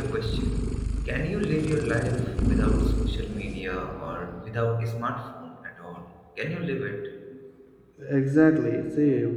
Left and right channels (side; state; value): both; identical; correlation 1.00